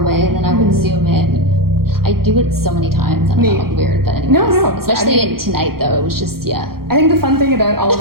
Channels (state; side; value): late; left; 0.94 ms